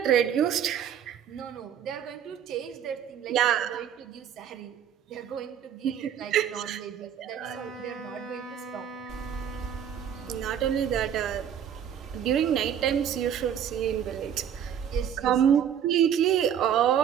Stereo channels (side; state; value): left; quieter; 9.0 dB